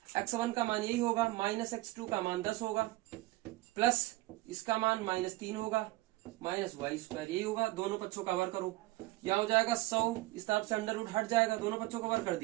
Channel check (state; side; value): quieter; left; 19.7 dB